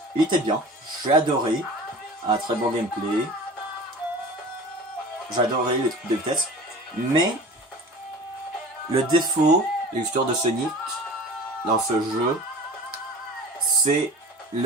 il était bien. J'ai adoré. Un très bon gameplay. J'ai adoré les trucs de vitesse. Mais, le défaut de l'histoire de Sonic dans ce jeu, c'est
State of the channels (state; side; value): normal; both; correlation 0.39